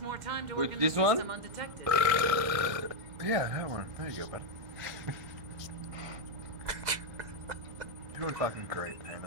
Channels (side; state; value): left; late; 2.0 ms